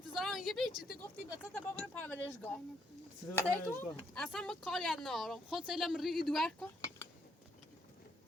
یه بی چی گفتی بچه تا بابر پرورشگاه سلامتی؟ اصلا ما کاری ندارم خود سیلم ریگی دوار کن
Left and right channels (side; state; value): both; normal; correlation 0.72